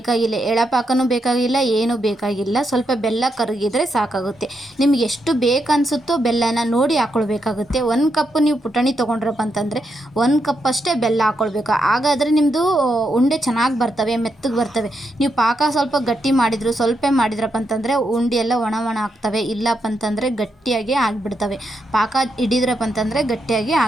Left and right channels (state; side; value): normal; both; correlation 0.82